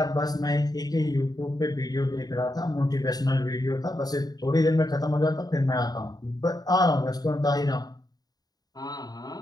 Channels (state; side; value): late; right; 0.19 ms